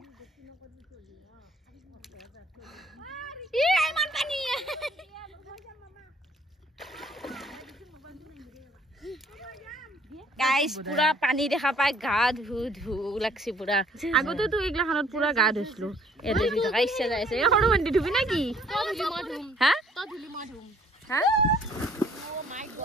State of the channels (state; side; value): normal; both; correlation 0.61